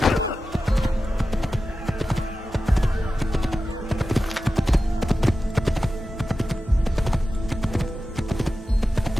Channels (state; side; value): normal; both; correlation 0.93